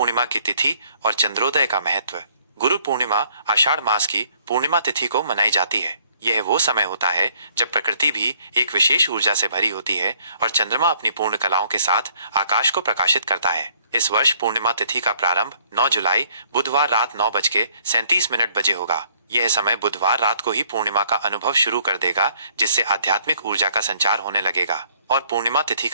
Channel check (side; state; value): both; inverted; correlation -0.63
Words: की तिथि और चंद्रोदय का महत्व। गुरु पूर्णिमा आषाढ़ मास की पूर्णिमा तिथि को मनाई जाती है। यह वो समय होता है जब प्रकृति भी एक विशेष ऊर्जा से भरी होती है और चंद्रमा अपनी पूर्ण कलाओं के साथ आकाश को प्रकाशित करता है। इस वर्ष पूर्णिमा तिथि का प्रारंभ 9 जुलाई बुधवार रात 9:37 बजे होगा। यह समय बुधवार रात को ही पूर्णिमा का अनुभव शुरू कर देगा, जिससे आध्यात्मिक ऊर्जा का संचार होने लगेगा। और पूर्णिमा तिथि